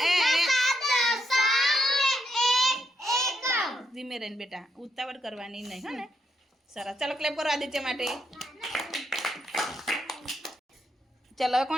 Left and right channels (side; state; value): both; normal; correlation 0.78